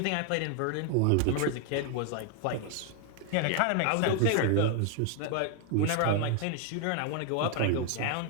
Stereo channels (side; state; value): both; different; correlation 0.00